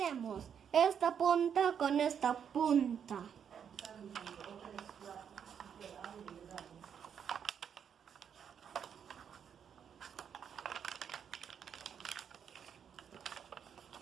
Esta punta con esta punta.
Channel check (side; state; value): left; quieter; 7.9 dB